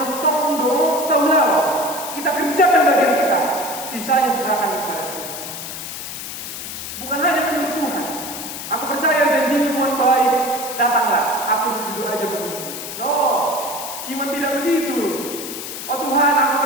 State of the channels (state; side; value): noise; left; hiss, 8 dB below the sound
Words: tondo, taulah. Kita kerjakan bagian kita, sisanya serahkan kepada Tuhan. Iman tidak begitu. Oh Tuhan, aku